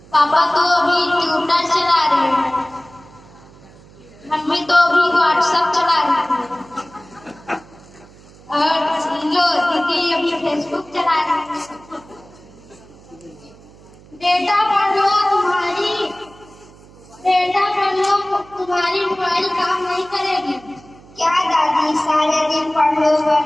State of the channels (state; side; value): noise; right; hum, 24 dB below the sound